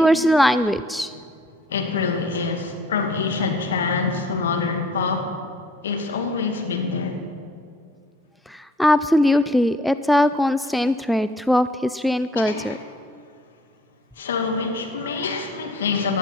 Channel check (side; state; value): both; normal; correlation 0.56